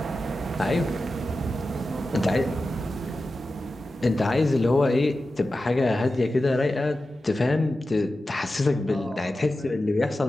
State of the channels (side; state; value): both; normal; correlation 0.93